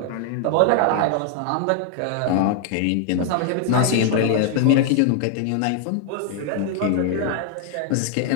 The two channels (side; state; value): both; different; correlation 0.00